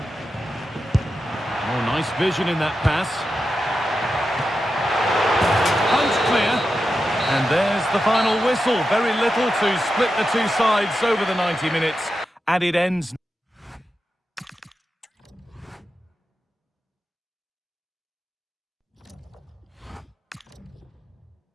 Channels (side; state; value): both; normal; correlation 0.89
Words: Nice vision in that pass. Punch clear. And there's the final whistle. Very little to split the two sides over the 90 minutes. And it ends.